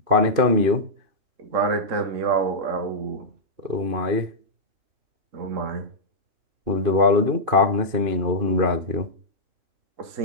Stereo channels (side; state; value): left; late; 2.5 ms